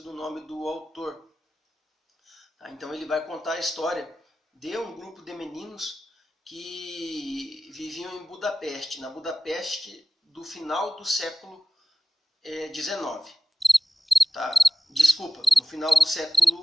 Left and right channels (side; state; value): both; normal; correlation 0.95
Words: do nome do autor. Tá? Então ele vai contar a história de um grupo de meninos que viviam em Budapeste, na Budapeste do final do século XIX. Tá? Desculpa, no final do